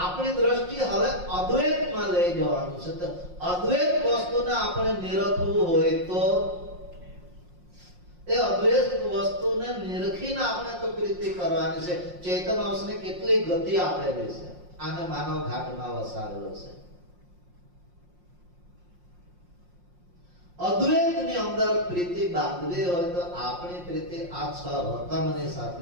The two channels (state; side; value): late; left; 5.6 ms